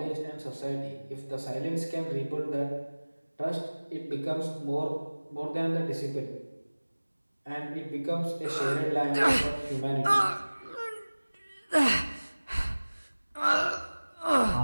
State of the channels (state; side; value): inverted; both; correlation -1.00